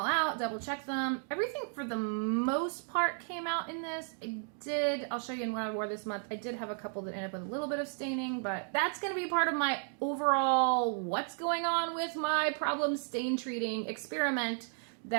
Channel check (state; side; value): silent; left; 55 dB below the other